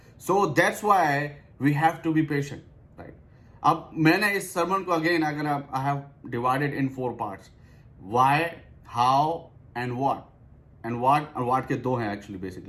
So that's why we have to be patient, right? अब मैंने इस सर्मन को अगेन अगर I have divided in 4 parts, why, how and what. And what के 2 हैं एक्चुअली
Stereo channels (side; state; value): both; identical; correlation 1.00